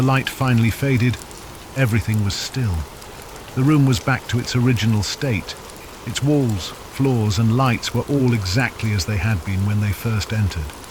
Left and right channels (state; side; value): identical; both; correlation 1.00